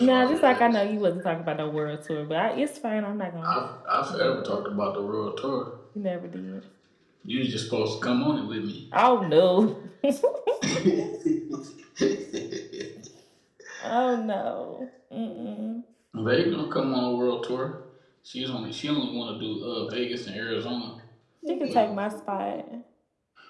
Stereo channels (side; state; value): both; identical; correlation 1.00